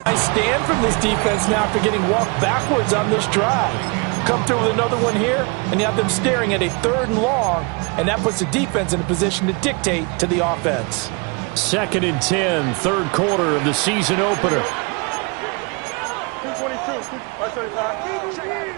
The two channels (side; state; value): left; quieter; 31.3 dB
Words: I stand from this defense now after getting walked backwards on this drive. Come through with another one here, and you have them staring at a 3rd and long, and that puts the defense in a position to dictate to the offense. 2nd and 10, 3rd quarter of the season opener. 222,